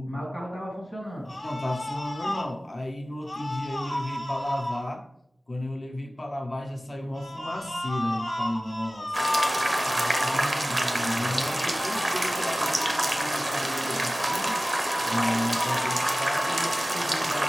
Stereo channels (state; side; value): normal; both; correlation 0.97